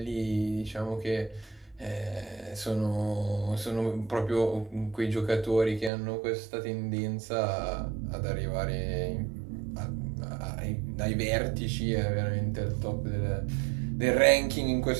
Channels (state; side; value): drops out; left; at 5.9 s